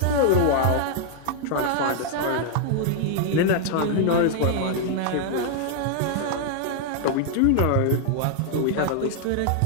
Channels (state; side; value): different; both; correlation 0.00